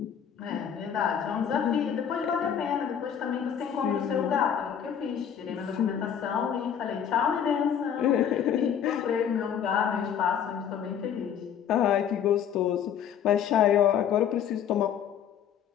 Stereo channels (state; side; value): quieter; right; 8.6 dB